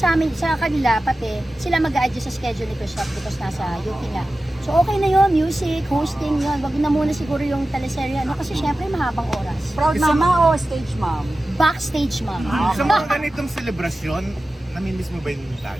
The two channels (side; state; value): both; normal; correlation 0.94